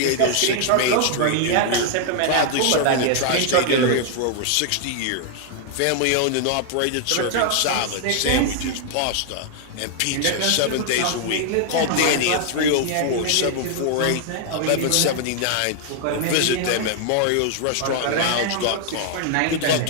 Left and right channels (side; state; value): both; different; correlation 0.00